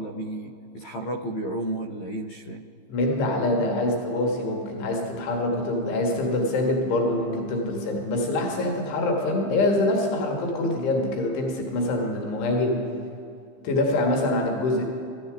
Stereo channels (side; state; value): right; late; 15 ms